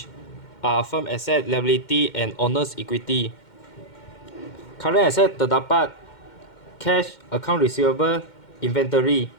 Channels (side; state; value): right; late; 2.1 ms